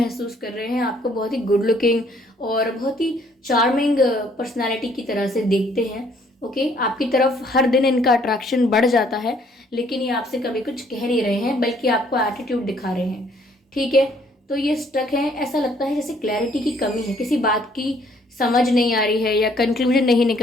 कर रहे हैं, आपको बहुत ही गुड लुकिंग और बहुत ही चार्मिंग पर्सनालिटी की तरह से देखते हैं। ओके, आपकी तरफ हर दिन इनका अट्रैक्शन बढ़ जाता है, लेकिन ये आपसे कभी कुछ कह नहीं रहे हैं बल्कि आपको एटीट्यूड दिखा रहे हैं। ठीक है, तो ये स्टक है, ऐसा लगता है जैसे क्लैरिटी की कमी है, किसी बात की समझ नहीं आ रही है या कंक्लूजन नहीं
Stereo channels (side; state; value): both; normal; correlation 0.63